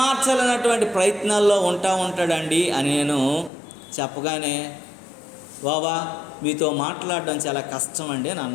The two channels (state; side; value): drops out; right; at 3.5 s